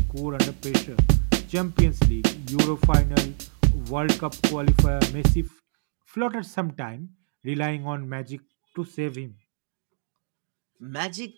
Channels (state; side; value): silent; left; 61 dB below the other